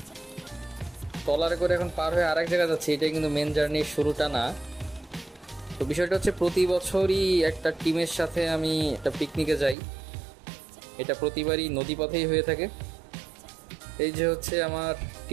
ট্রলারে করে এখন পার হয়ে আরেক জায়গায় যাচ্ছি। এটা কিন্তু মেন জার্নির শুরুটা না। তো বিষয়টা হচ্ছে প্রতি বছরই একটা টিমের সাথে আমি একটা পিকনিকে যাই। এটা প্রতিবারই নদীপথেই হয়ে থাকে। এই যে হচ্ছে আমার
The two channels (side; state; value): left; drops out; at 9.8 s